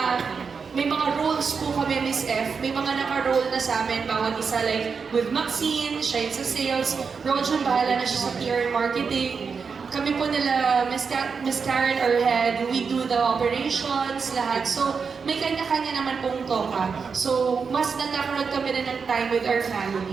may mga roles po kami, Miss F. May mga naka-role na sa amin, bawat isa. Like, with Maxine, siya yung sa sales. Rojan, bahala na siya sa PR and marketing. Kami po nila, Miss Karen, our head, we do the operations, lahat. So, may kanya-kanya naman pong toka. So, mas nagkakaroon kami na ng time with our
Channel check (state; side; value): quieter; left; 5.5 dB